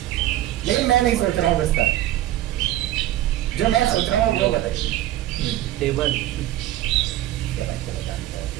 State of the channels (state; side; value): quieter; left; 14.1 dB